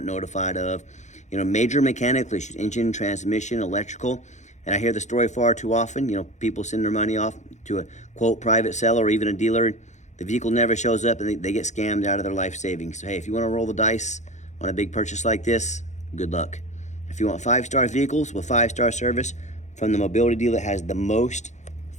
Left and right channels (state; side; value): late; right; 0.34 ms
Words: notified of, you know, major mechanical issues, engine, transmission, electrical. And I hear the story far too often. You know, people send their money off to a, quote, private seller or even a dealer. The vehicle never shows up and they get scammed out of their life savings. So, hey, if you want to roll the dice on a big purchase like this, good luck. If you want 5-star vehicles with 5-star service from the mobility dealer that has the most